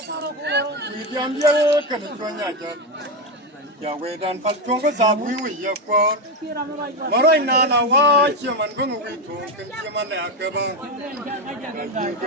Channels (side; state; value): both; normal; correlation 0.10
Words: Ya we dan fal chong ko sa bui wi ya ko maroi na na wa chi man ko wi thong ken chi man la ka ba ji